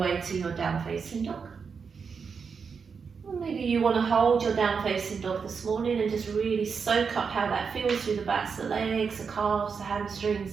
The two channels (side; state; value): left; quieter; 5.8 dB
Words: to your down facing dog. Or maybe you want to hold your down facing dog this morning and just really soak up how that feels through the backs of the legs, the calves, the hamstrings,